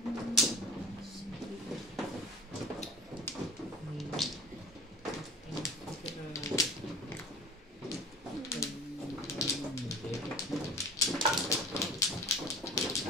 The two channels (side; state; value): both; normal; correlation 0.41